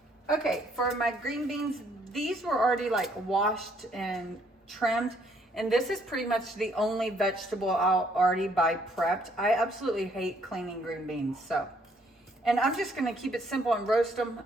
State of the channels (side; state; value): both; normal; correlation 0.67